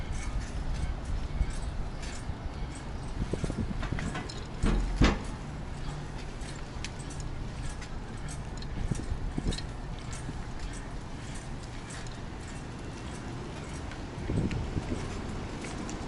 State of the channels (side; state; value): both; identical; correlation 1.00